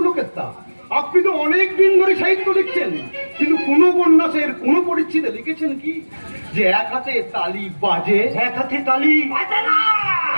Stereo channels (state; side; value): inverted; both; correlation -1.00